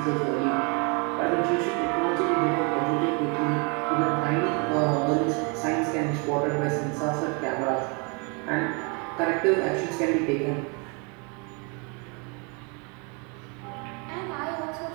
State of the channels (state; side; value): quieter; left; 33.3 dB